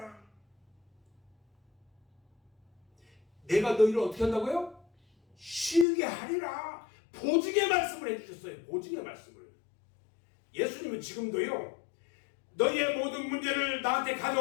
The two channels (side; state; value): right; drops out; at 5.9 s